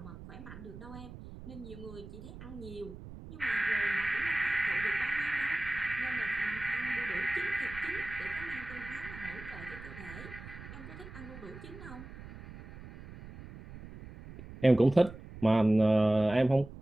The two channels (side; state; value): right; noise; rumble, 14 dB below the sound